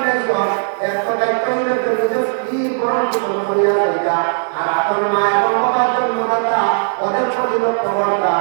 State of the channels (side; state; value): left; silent; digital silence